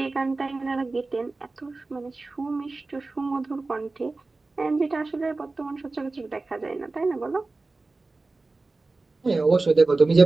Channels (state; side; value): quieter; left; 3.4 dB